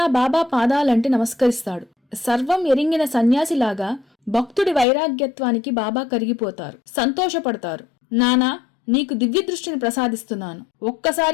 బాబా పాదాలంటి నమస్కరిస్తాడు. సర్వం ఎరింగిన సన్యాసిలాగా భక్తుడి వైరాగ్యత్వానికి బాబా కరిగిపోతారు, సంతోషపడతారు. నానా, నీకు దివ్య దృష్టిని ప్రసాదిస్తున్నాను,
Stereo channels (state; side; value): drops out; right; at 4.9 s